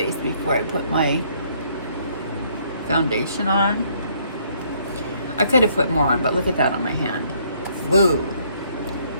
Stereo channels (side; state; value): both; inverted; correlation -0.66